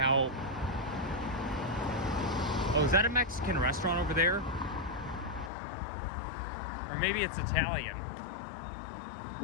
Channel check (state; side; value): drops out; right; at 5.5 s